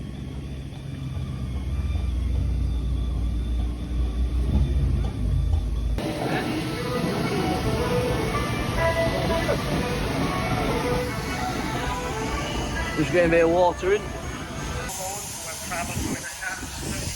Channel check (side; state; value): both; identical; correlation 1.00